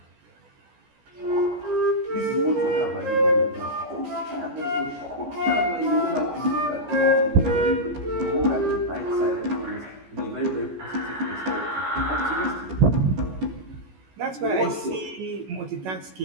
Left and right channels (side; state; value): left; late; 14 ms